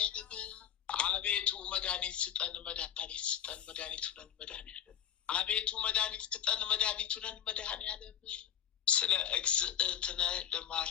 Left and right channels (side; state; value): right; quieter; 10.0 dB